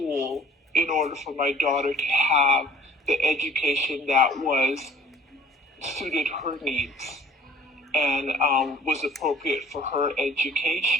in order for my daughter to have the education that was suited her needs and was appropriate for her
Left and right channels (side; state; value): both; normal; correlation 0.51